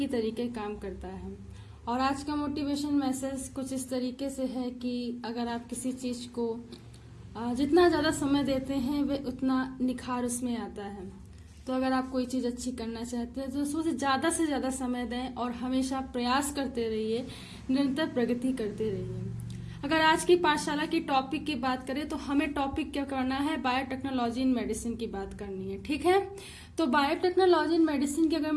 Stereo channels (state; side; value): identical; both; correlation 1.00